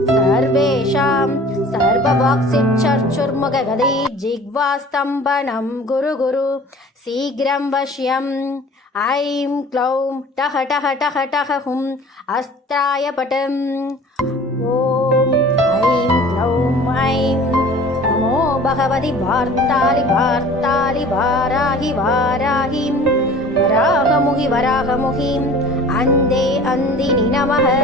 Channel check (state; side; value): normal; both; correlation 0.45